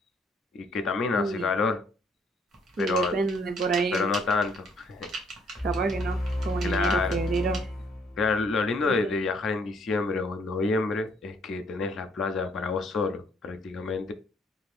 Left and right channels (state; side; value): normal; both; correlation 0.65